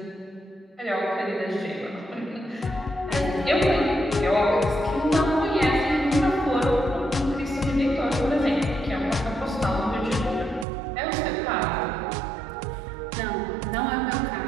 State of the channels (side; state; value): left; drops out; at 10.7 s